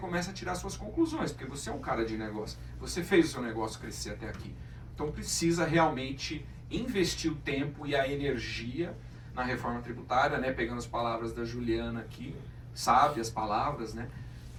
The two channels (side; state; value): both; identical; correlation 1.00